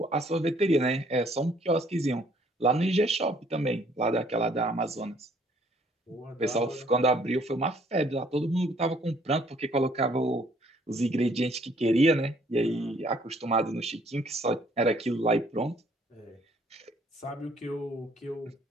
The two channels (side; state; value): both; normal; correlation 0.62